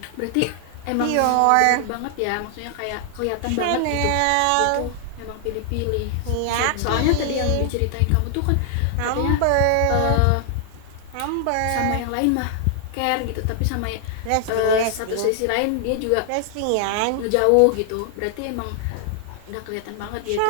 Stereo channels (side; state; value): both; different; correlation 0.00